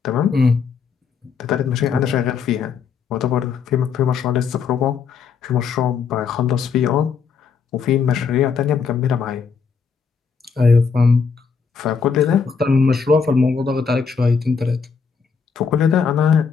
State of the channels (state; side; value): quieter; right; 5.9 dB